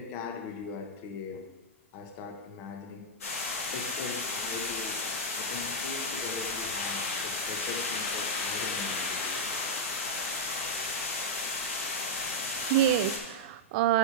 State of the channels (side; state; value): both; normal; correlation -0.03